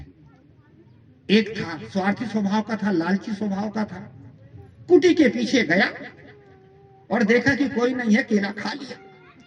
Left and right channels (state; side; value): identical; both; correlation 1.00